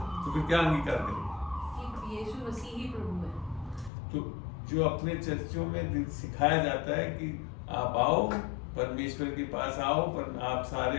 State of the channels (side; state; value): right; drops out; at 3.9 s